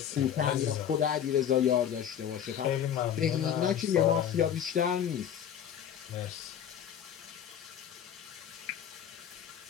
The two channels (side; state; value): right; quieter; 9.2 dB